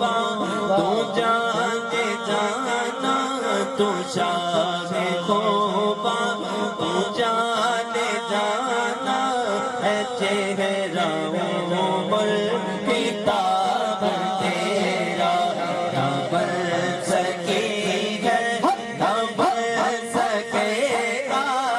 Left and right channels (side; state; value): both; identical; correlation 1.00